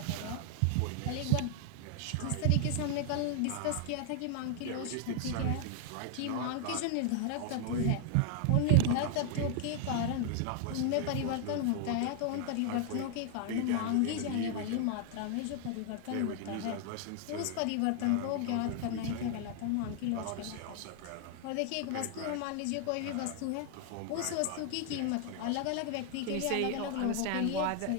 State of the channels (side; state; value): both; different; correlation 0.00